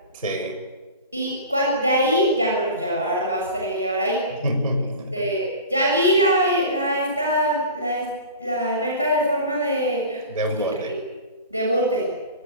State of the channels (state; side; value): inverted; both; correlation -0.35